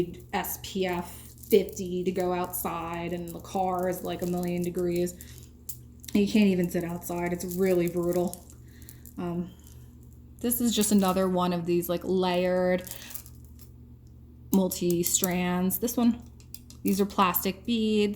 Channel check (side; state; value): both; identical; correlation 1.00